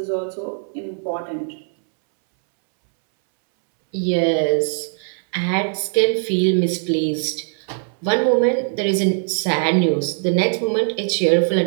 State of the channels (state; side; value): silent; left; 65 dB below the other